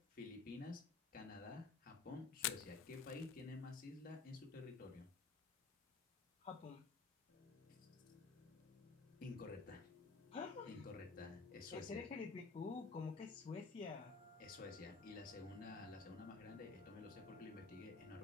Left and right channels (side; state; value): right; quieter; 4.6 dB